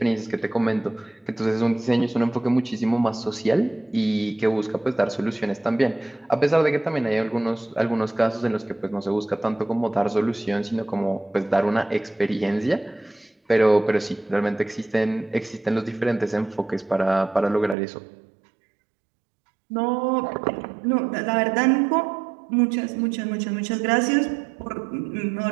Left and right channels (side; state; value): left; drops out; at 17.8 s